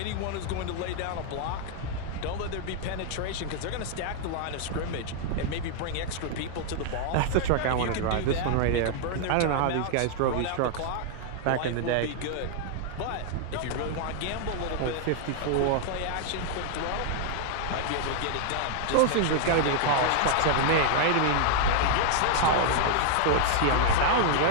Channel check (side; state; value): both; different; correlation -0.01